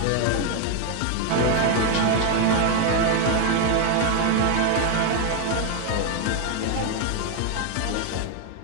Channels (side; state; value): both; different; correlation 0.01